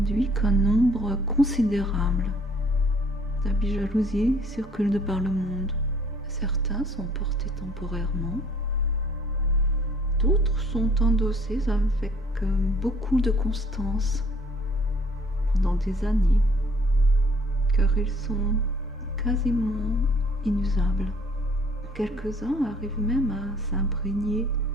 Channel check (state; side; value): normal; both; correlation 0.58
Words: qu'un nombre considérable d'habits jalousie circulent de par le monde. Certains sont portés temporairement, d'autres sont endossés avec beaucoup de constance pendant des années, car ils sont quasiment inusables. Quelques-uns arrivent même à s'imprégner,